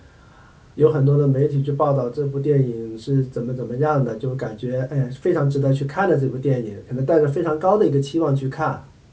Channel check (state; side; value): identical; both; correlation 1.00